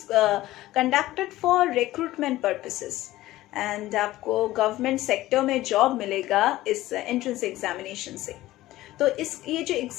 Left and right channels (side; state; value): right; quieter; 16.3 dB